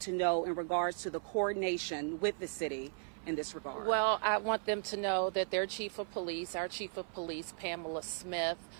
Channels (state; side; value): silent; left; 53 dB below the other